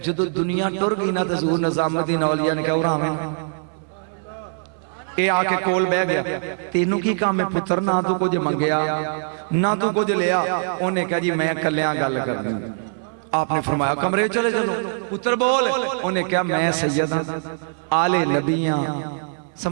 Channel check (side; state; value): left; silent; digital silence